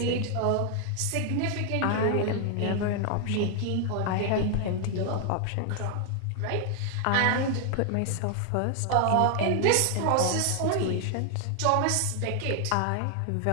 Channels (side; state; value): both; different; correlation 0.00